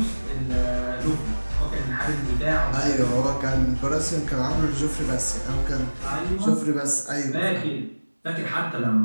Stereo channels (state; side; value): inverted; both; correlation -1.00